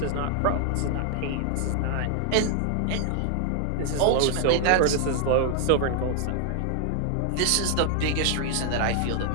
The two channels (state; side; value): different; both; correlation 0.00